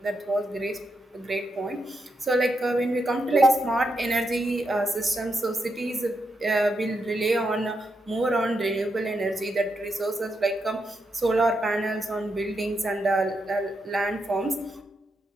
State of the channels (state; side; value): normal; both; correlation 0.83